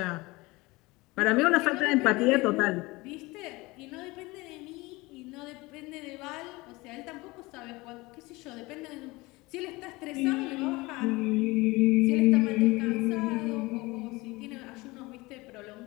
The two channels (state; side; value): quieter; right; 22.4 dB